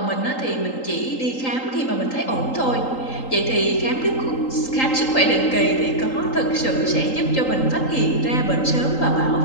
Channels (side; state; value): right; late; 3.8 ms